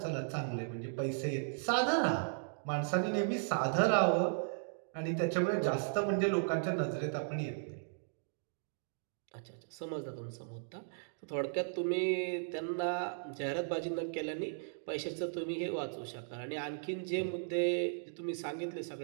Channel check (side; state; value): left; silent; digital silence